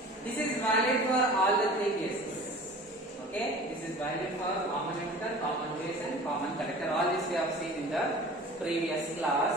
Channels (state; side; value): normal; both; correlation 0.41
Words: This is valid for all the three cases. Okay, this is valid for common emitter, common base, and common collector. All this we have seen in the previous